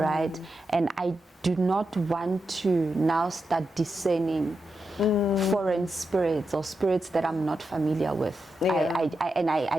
And I do not want to now start discerning foreign spirits or spirits that I'm not familiar with.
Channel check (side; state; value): both; normal; correlation 0.87